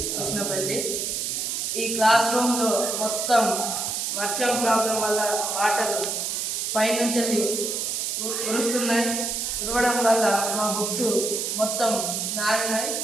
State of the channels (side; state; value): right; noise; hiss, 1 dB below the sound